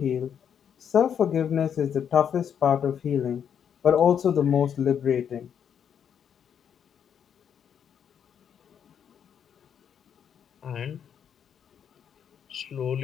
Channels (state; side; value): quieter; right; 8.2 dB